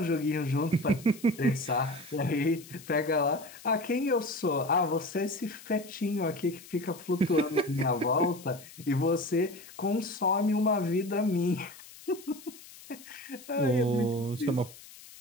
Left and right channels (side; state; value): left; noise; hiss, 19 dB below the sound